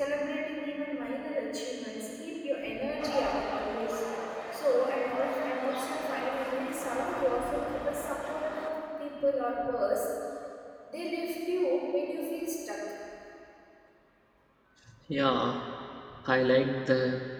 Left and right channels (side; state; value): both; identical; correlation 1.00